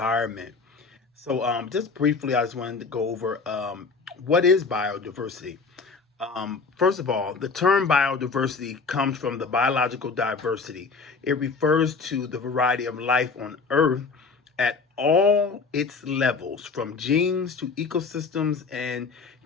So, just briefly, I just wanted to go over what is biodiversity. First of all, the term biodiversity comes from the biological diversity. It refers to the variety of life on Earth at all its levels, from genes to ecosystems, and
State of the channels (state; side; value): quieter; right; 4.6 dB